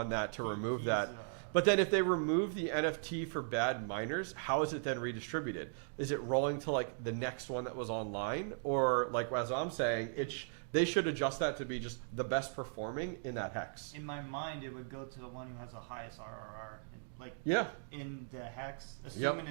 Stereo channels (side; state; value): left; silent; digital silence